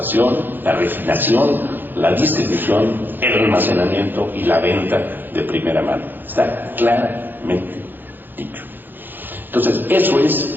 la refinación, la distribución, el almacenamiento y la venta de primera mano. Está claramente dicho. Entonces, eso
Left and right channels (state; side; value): late; left; 0.092 ms